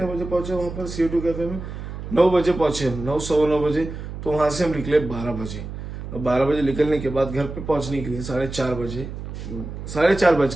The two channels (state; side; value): noise; right; hum, 9 dB below the sound